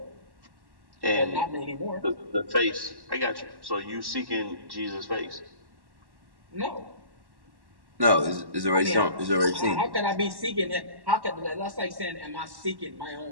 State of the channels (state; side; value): late; left; 1.1 ms